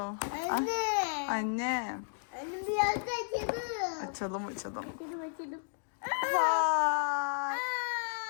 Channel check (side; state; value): right; silent; digital silence